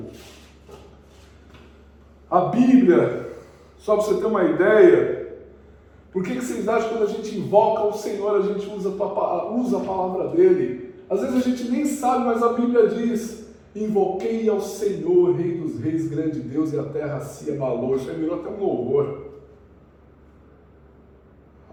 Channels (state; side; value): identical; both; correlation 1.00